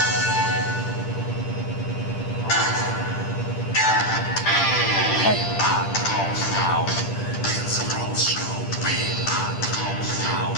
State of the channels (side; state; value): right; late; 10 ms